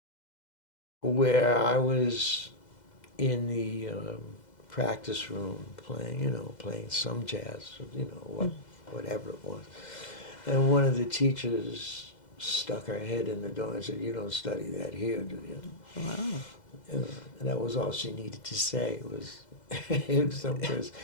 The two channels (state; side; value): late; right; 2.0 ms